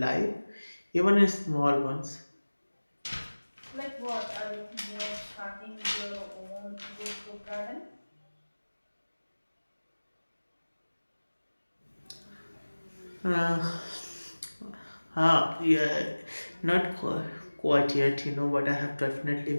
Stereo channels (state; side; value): inverted; both; correlation -1.00